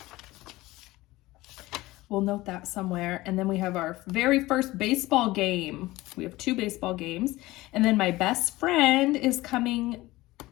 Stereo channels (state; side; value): quieter; right; 18.9 dB